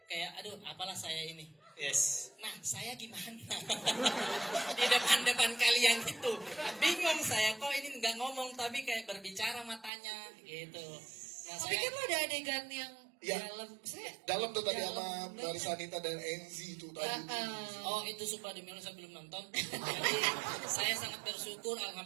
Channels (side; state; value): left; drops out; at 9.9 s